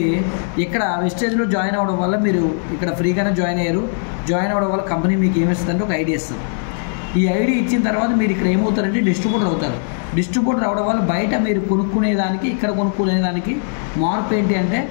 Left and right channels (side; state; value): right; silent; digital silence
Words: ఇక్కడ విస్టేజ్లో జాయిన్ అవ్వడం వల్ల మీరు ఇక్కడ ఫ్రీగానే జాయిన్ అయ్యారు. జాయిన్ అవ్వడం వల్ల కంపెనీ మీకు ఏమిస్తుందంటే ఒక ఐడి ఇస్తుంది. ఈ ఐడి ఇచ్చిన తర్వాత మీరు ఇక్కడ ఏమవుతారంటే డిస్ట్రిబ్యూటర్ అవుతారు. డిస్ట్రిబ్యూటర్ అవడం వల్ల బయట మీరు కొనుక్కునేదానికి ఇక్కడ కొనుక్కునేదానికి మార్పు ఏంటి అంటే